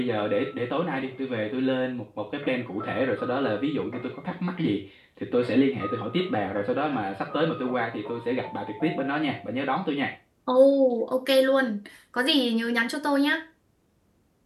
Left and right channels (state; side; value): identical; both; correlation 1.00